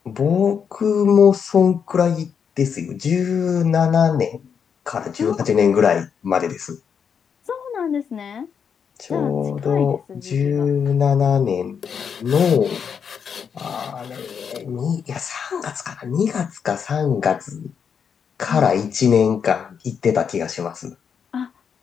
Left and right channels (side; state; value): right; quieter; 7.0 dB